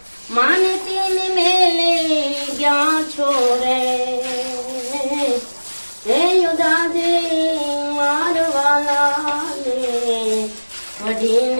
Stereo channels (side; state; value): both; inverted; correlation -1.00